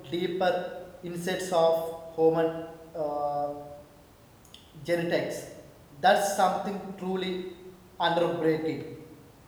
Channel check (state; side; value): identical; both; correlation 1.00